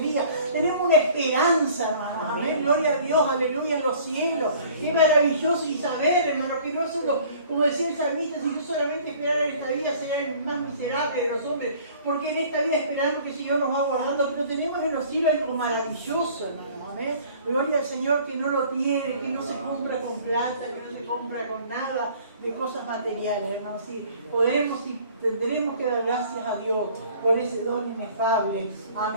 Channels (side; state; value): both; inverted; correlation -0.52